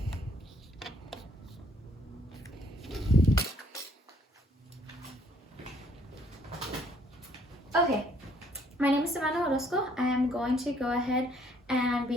Okay, my name is Savannah Orozco. I am going to go ahead and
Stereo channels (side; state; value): both; normal; correlation 0.65